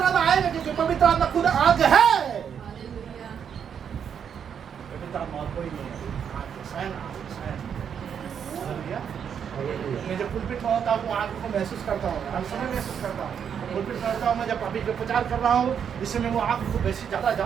आत्मा आएगा, क्योंकि पवित्र आत्मा खुद आग है। पवित्र आत्मा और कोई नहीं है, आग स्वयं स्वयं। हालेलुया। मैं जब पुलपिट में होता हूँ आग को महसूस करता हूँ, हर समय महसूस करता हूँ। पुलपिट करता हूँ मैं, जब अभी जो प्रचार कर रहा हूँ इससे मैं वो आग को बेसी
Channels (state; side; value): quieter; left; 7.8 dB